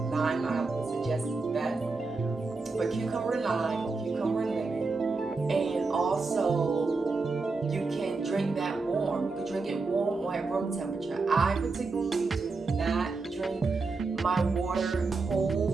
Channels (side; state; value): left; quieter; 4.0 dB